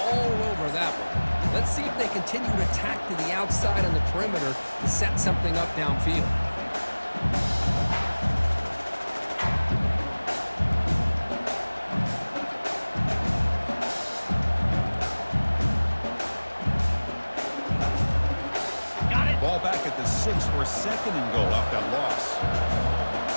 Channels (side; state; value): both; inverted; correlation -1.00